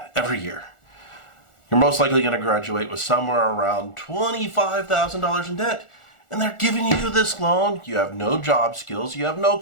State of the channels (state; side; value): late; right; 1.4 ms